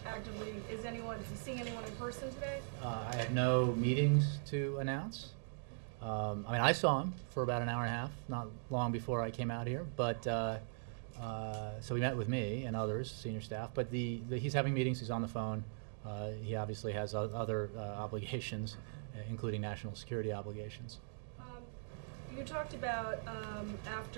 actively, is he seeing anyone in person today? I had no meetings to announce. I saw him for about an hour and a half, not long before I came out here. But so he met with me and others, senior staff. But he's having meetings. He's on the phone. He obviously has other obligations, including national security obligations. you talked about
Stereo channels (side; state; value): left; silent; digital silence